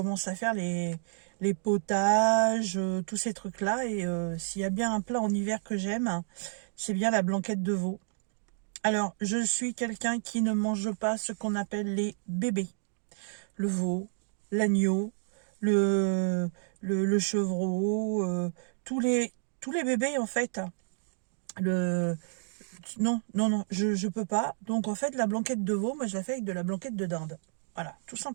à faire les potages, tous ces trucs-là. Et s'il y a bien un plat en hiver que j'aime, c'est bien la blanquette de veau. Alors, je suis quelqu'un qui ne mange pas ce qu'on appelle les bébés. Le veau, l'agneau, le chevreau, tous les bébés en fait. Non, je peux pas. Donc en fait, la blanquette de veau, moi je la fais avec de la blanquette de dinde. Voilà, tout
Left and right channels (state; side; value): silent; left; digital silence